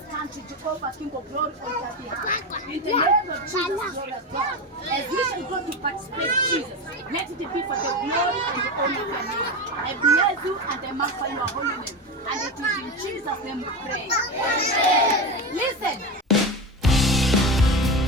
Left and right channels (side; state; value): both; normal; correlation 0.20